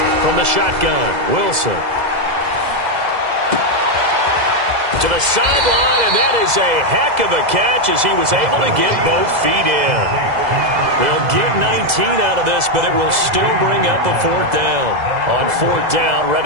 From the shotgun, Wilson. To the sideline, and that is a heck of a catch as he was able to get both feet in. They'll get 19 out of this, but it will still bring up a 4th down. On 4th down,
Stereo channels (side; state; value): left; late; 2.0 ms